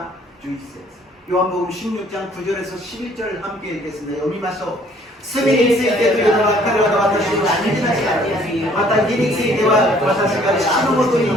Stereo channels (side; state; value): both; normal; correlation 0.59